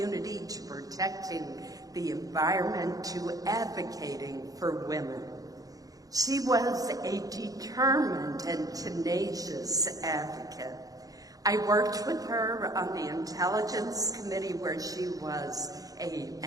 to protecting the environment to advocating for women. She was a determined and tenacious advocate. I worked with her on the Intelligence Committee, where she was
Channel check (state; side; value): late; left; 0.17 ms